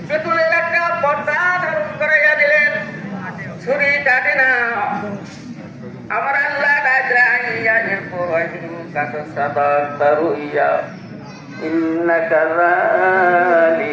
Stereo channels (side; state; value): both; identical; correlation 1.00